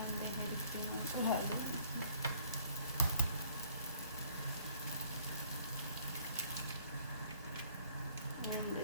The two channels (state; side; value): inverted; both; correlation -0.60